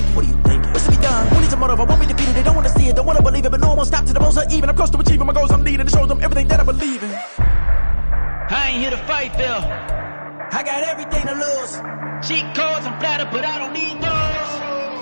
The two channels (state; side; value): inverted; both; correlation -1.00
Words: What are you thinking? What's to be done? Who needs a motive? I won't be defeated. They don't want to see it, don't want to believe it, but no one won't stop to the most even. I'm close to achieving my goals I'm needing to show them everything that I believe in. I ain't here to fight, Phil. I got everything to lose. Cheat codes, I'm flattered, but I don't need